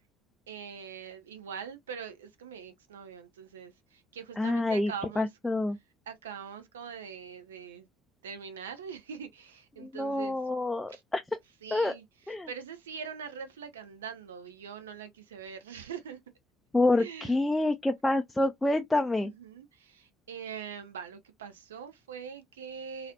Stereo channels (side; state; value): both; normal; correlation 0.84